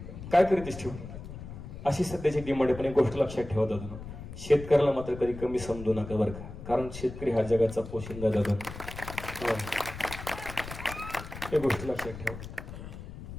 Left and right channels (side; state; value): left; noise; rumble, 11 dB below the sound